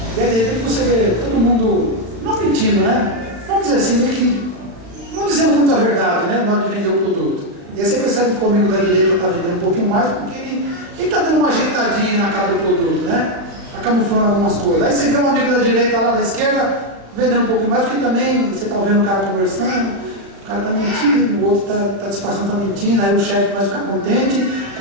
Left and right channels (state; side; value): late; left; 36 ms